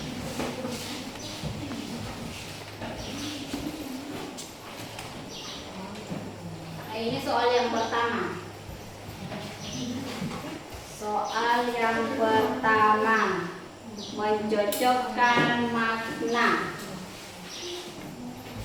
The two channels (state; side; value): identical; both; correlation 1.00